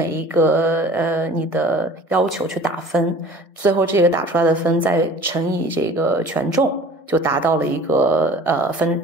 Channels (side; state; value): right; late; 1.6 ms